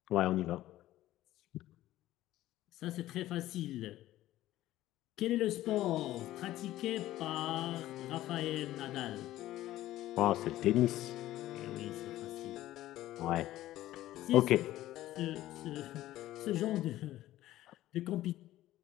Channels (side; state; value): right; quieter; 14.8 dB